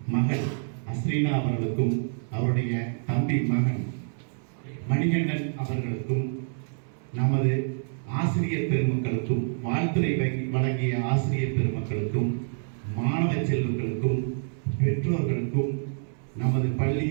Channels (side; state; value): left; silent; 60 dB below the other